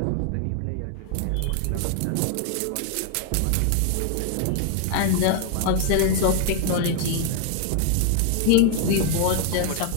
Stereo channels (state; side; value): different; both; correlation 0.00